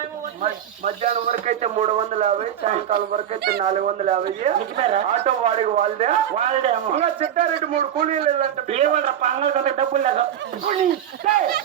మధ్యాహ్నం వరకు అయితే 350, సాయంకాలం వరకు అయితే 450. ఆటో వాడికి వాళ్ళదే వాళ్ళే అమ్మ ఇంకా చిట్టారెడ్డి 3 కూలీలు వెళ్ళంటే ఏ వాళ్ళ పంగల్ కంటే డబ్బులు లేదు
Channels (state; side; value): quieter; left; 10.2 dB